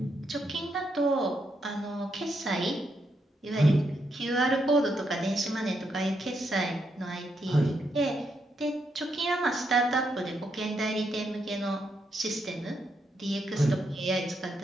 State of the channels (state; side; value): normal; both; correlation 0.80